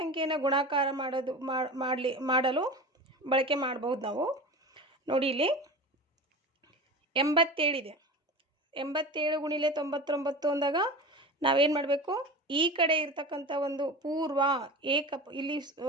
ಗುಣಾಕಾರ ಮಾಡಲು ಬಳಕೆ ಮಾಡಬಹುದು ನಾವು. ನೋಡಿ, ಇಲ್ಲಿ 87 ಇದೆ. 87 ಗುಣಿಲೆ 99 ಅಂದಾಗ ನಾವೇನು ಮಾಡಬೇಕು? ಈ ಕಡೆ ಇರ್ತಕ್ಕಂಥ ಒಂದು ಪೂರ್ವ ಇಲ್ಲಿ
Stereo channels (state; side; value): normal; both; correlation 0.31